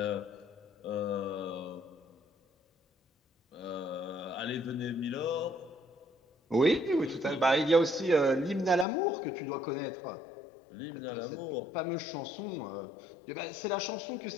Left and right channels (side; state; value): right; drops out; at 8.8 s